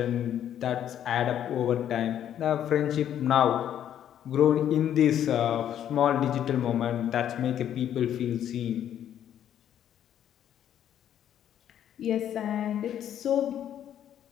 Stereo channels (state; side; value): quieter; right; 10.3 dB